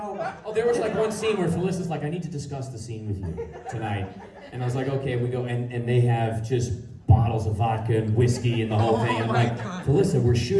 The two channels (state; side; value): identical; both; correlation 1.00